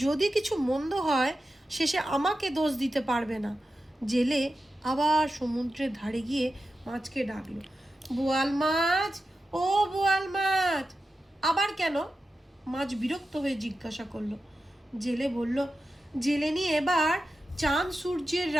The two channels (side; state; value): both; normal; correlation 0.91